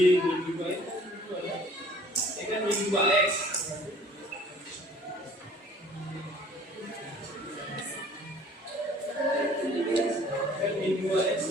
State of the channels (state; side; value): normal; both; correlation 0.52